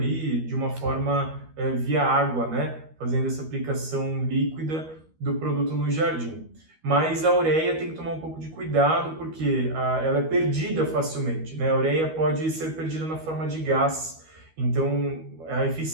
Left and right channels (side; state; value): left; late; 13 ms